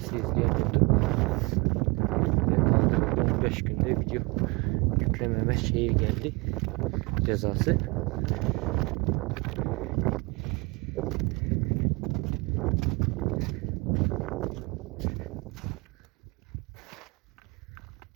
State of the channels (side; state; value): left; quieter; 27.3 dB